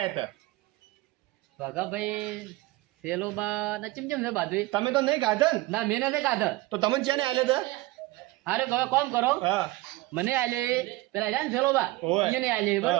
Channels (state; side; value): quieter; left; 19.6 dB